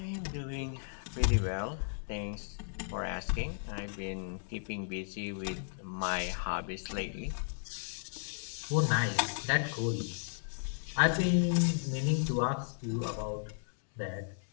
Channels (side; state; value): right; silent; digital silence